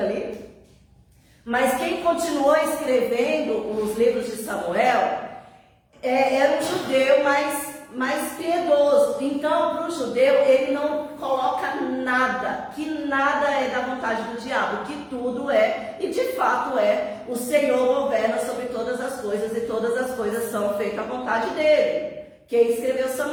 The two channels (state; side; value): identical; both; correlation 1.00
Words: Mas quem continuou escrevendo os livros de Samuel era um judeu mais piedoso. Então, para o judeu, ele não coloca nada, que nada é da vontade do diabo, que tudo é, e de fato é, o Senhor governa sobre todas as coisas, e todas as coisas são feitas à vontade dele. Quem escreveu